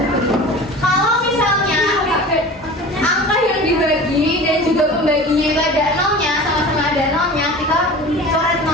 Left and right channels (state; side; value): normal; both; correlation 0.37